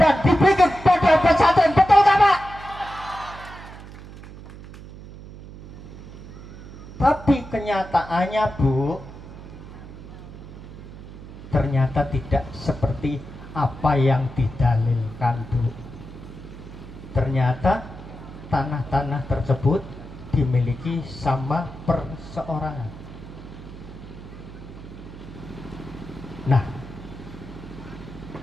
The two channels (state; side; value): noise; right; hum, 15 dB below the sound